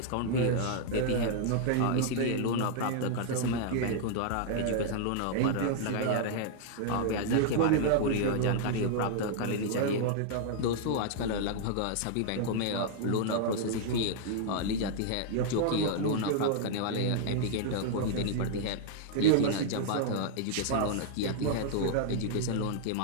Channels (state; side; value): different; both; correlation -0.01